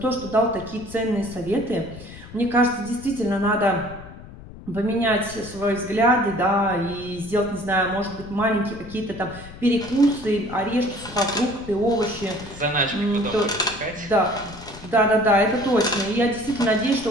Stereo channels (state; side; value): noise; left; rumble, 16 dB below the sound